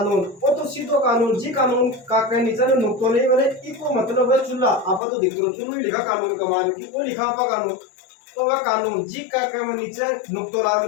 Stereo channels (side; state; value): right; drops out; at 5.0 s